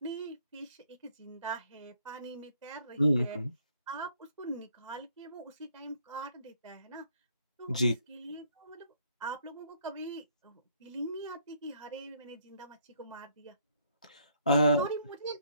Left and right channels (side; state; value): both; inverted; correlation -0.66